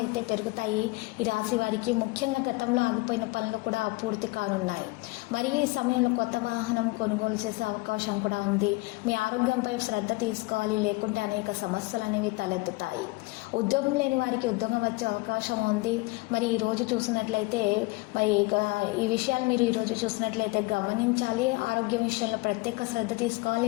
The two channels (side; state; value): right; quieter; 23.4 dB